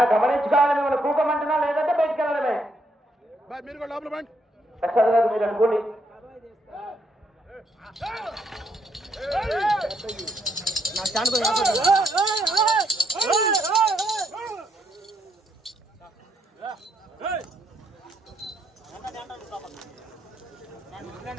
గమనించుకోవాలి. మిమ్మల్ని కూకమంటున్నా లేదంటే బయటికి వెళ్ళడమే. ప్రసాద్ గారు మీరు అనుకోండి.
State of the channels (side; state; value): both; normal; correlation 0.74